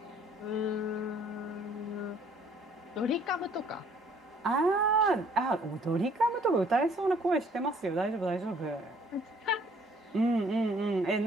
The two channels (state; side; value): normal; both; correlation 0.59